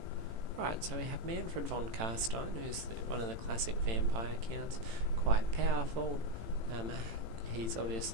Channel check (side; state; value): left; late; 18 ms